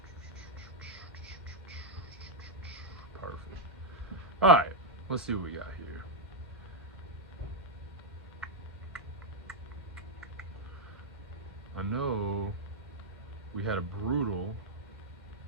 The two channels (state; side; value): normal; both; correlation -0.02